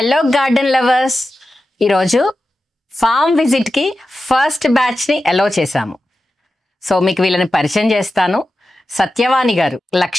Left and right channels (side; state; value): both; normal; correlation 0.93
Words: గార్డెన్ లవర్స్, ఈరోజు ఫామ్ విజిట్కి ఫస్ట్ బ్యాచ్ని అలౌ చేశాము. సో మీకు వీళ్ళని పరిచయం చేస్తాను. సత్యవాణి గారు,